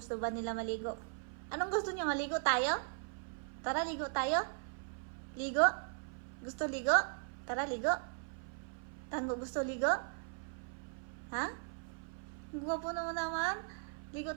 ba nila maligo. Anong gusto niyo? Maligo tayo? Tara, ligo tayo? Ligo? Gusto ligo? Tara, ligo? Tango, gusto ligo? Ha? Ang gwapo naman. Ligo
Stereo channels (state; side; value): silent; left; 52 dB below the other